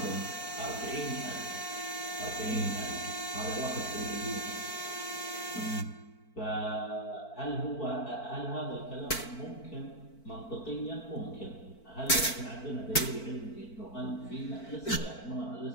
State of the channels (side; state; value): right; late; 4.5 ms